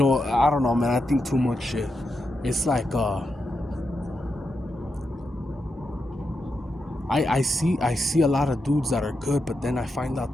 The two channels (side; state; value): both; normal; correlation 0.86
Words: know, man. I think too much shit. It's like I see a lot of dudes that are good, but then I find out